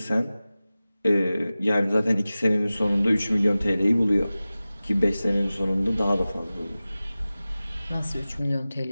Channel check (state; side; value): inverted; both; correlation -0.97